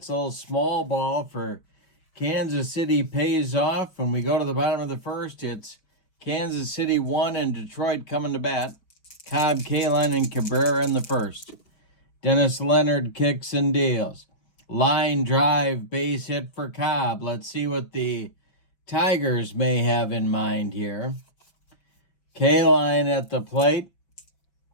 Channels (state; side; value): late; right; 5.7 ms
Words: A little small ball for Kansas City pays off. When we go to the bottom of the first, it's Kansas City 1 and Detroit coming to bat. Cobb, Kaline, and Cabrera in the first. Dennis Leonard kicks and deals. Line drive, base hit for Cobb. Let's see what the Tigers may have in mind here. Kaline at the plate.